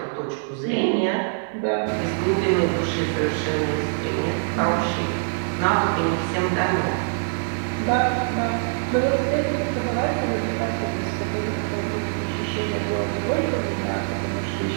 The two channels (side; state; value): left; silent; digital silence